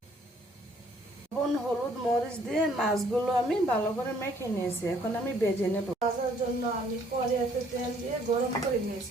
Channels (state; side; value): normal; both; correlation 0.62